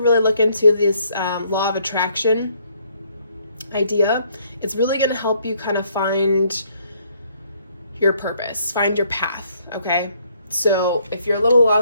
really look into this law of attraction idea. It's really going to help you kind of find your purpose, find your path, okay? So if you're a little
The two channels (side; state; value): both; inverted; correlation -0.68